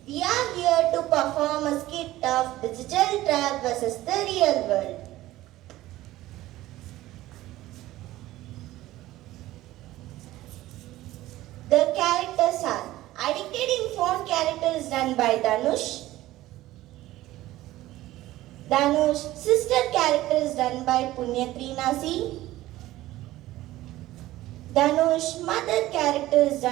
We are here to perform a skit of digital trap versus the real world. The characters are Addicted in Phone character is done by Danush. Danush sister character is done by Punyatreenasi. Danush mother character is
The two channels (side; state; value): left; quieter; 16.1 dB